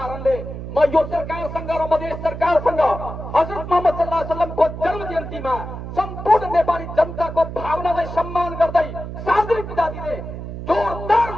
म यो सरकारसँग र मधेस सरकारसँग हजरत मोहम्मद सल्लल्लाहु अलैहि वसल्लमको जन्म जयन्तीमा सम्पूर्ण नेपाली जनताको भावनालाई सम्मान गर्दै सार्वजनिक विदा दिने जोरदार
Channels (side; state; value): right; noise; hum, 8 dB below the sound